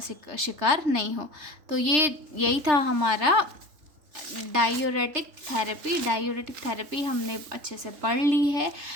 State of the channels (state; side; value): late; left; 3.3 ms